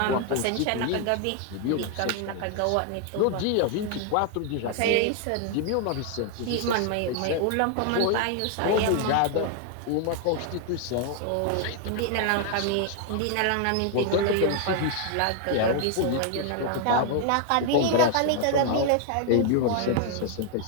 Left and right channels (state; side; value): different; both; correlation 0.00